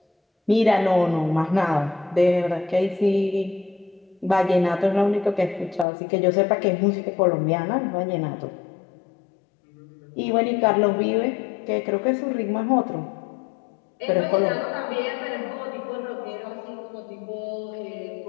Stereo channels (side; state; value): right; drops out; at 5.9 s